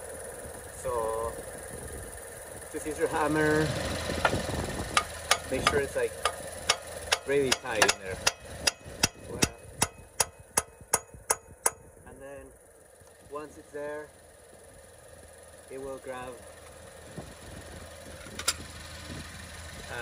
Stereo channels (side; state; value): both; identical; correlation 1.00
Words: So just use your hammer. Make sure it's like really tight in there. And then once it's there, it will grab